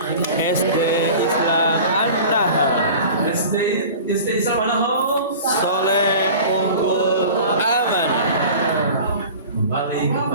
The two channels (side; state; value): both; inverted; correlation -0.39